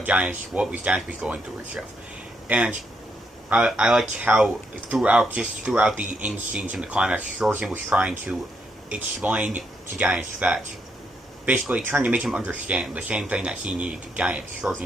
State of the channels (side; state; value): both; normal; correlation 0.77